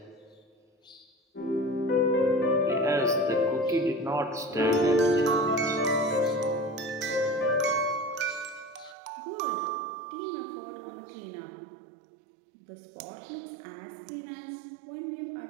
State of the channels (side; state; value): left; drops out; at 9.0 s